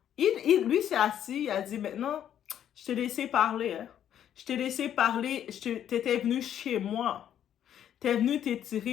lui s'est assis, il a dit maintenant, je t'ai laissé parler, hein. Je t'ai laissé parler, t'étais venu chez moi. T'es venu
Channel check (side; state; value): right; quieter; 10.1 dB